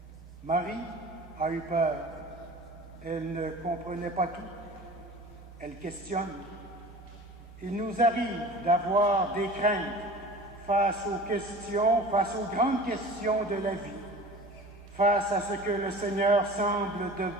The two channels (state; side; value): normal; both; correlation 0.40